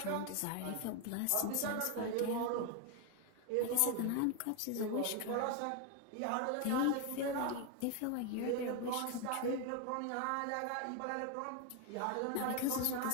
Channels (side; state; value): both; different; correlation 0.01